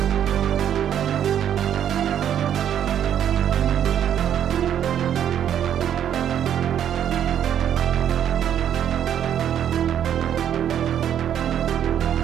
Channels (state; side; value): quieter; left; 9.8 dB